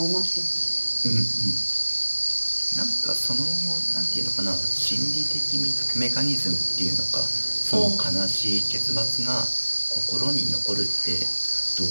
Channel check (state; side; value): inverted; both; correlation -1.00